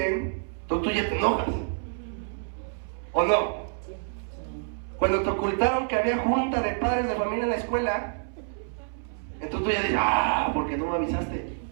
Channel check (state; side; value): silent; left; 59 dB below the other